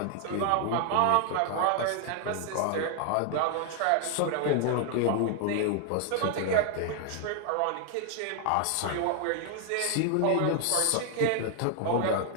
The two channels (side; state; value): both; different; correlation 0.00